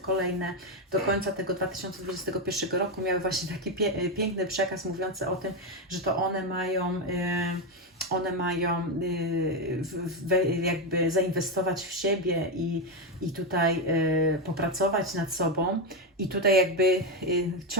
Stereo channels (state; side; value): normal; both; correlation 0.09